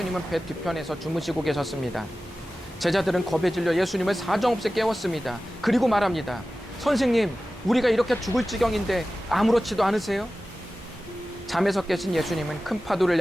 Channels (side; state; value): both; normal; correlation 0.95